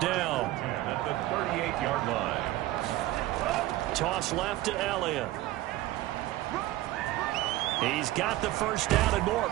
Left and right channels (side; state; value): left; quieter; 16.2 dB